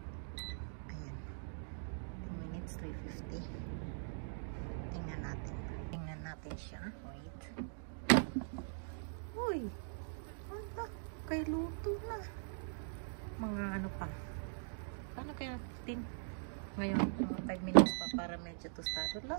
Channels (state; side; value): silent; left; digital silence